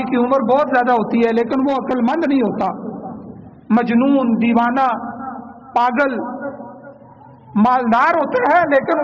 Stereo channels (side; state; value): both; identical; correlation 1.00